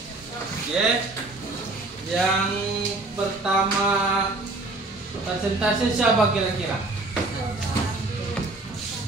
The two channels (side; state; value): left; quieter; 3.0 dB